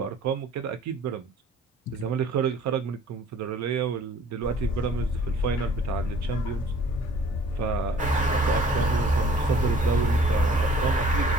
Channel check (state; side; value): normal; both; correlation 0.53